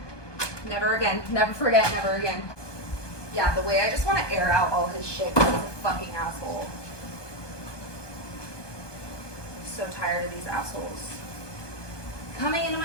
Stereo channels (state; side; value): late; right; 1.2 ms